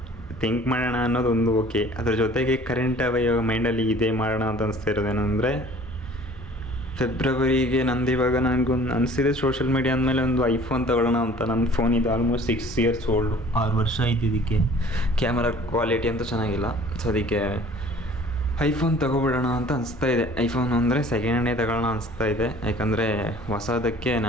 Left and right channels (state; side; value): normal; both; correlation 0.50